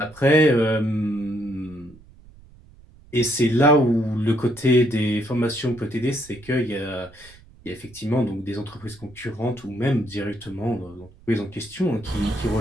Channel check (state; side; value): noise; right; rumble, 24 dB below the sound